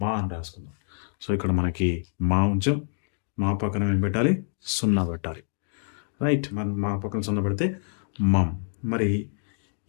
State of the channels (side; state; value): right; silent; 60 dB below the other